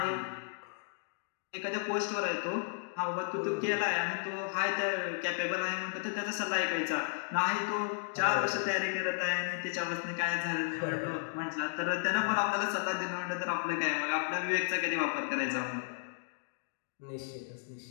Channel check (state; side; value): silent; right; digital silence